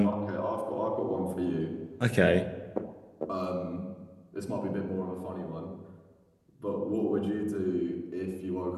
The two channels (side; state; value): both; identical; correlation 1.00